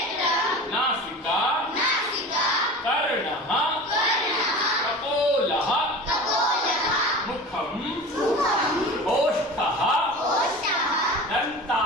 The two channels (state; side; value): normal; both; correlation 0.35